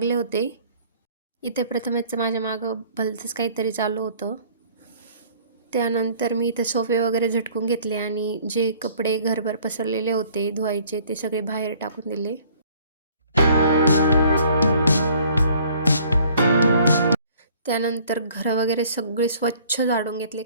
होते. इथे प्रथमेशचं माझ्या मागं भलतंच काहीतरी चालू होतं. त्यानंतर मी इथे सोफे वगैरे झटकून घेतले आणि जे कपडे घरभर पसरलेले होते धुवायचे ते सगळे बाहेर टाकून दिले. त्यानंतर घर वगैरे सगळे स्वच्छ झाडून घेतले,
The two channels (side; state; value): both; inverted; correlation -0.56